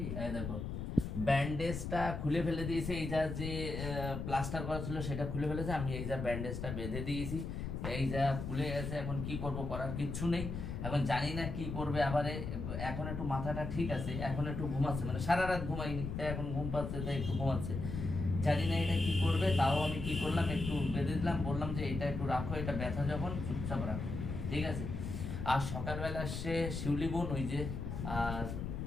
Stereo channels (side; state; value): left; noise; rumble, 5 dB below the sound